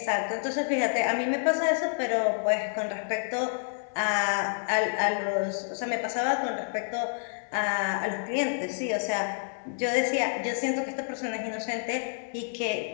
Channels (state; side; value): silent; right; digital silence